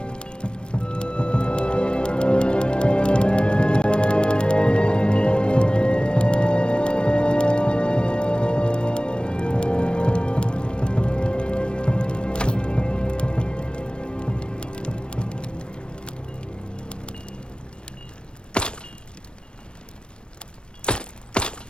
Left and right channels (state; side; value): late; right; 0.055 ms